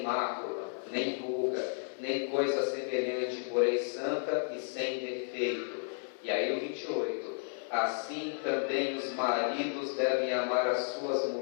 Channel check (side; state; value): right; silent; 56 dB below the other